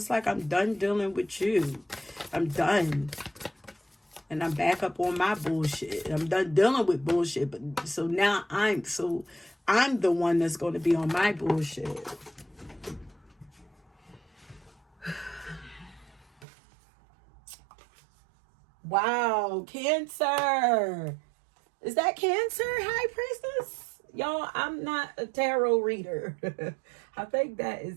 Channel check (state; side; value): drops out; left; at 16.4 s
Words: like I'm done dealing with you. I'm done. And I'm back up on my bullshit. I'm done dealing with bullshit. But so now I'm the one that's going to be on my bullshit. Wow, Cancer. Is that Cancer, High Priestess? Y'all, I'm not a tarot reader. I think that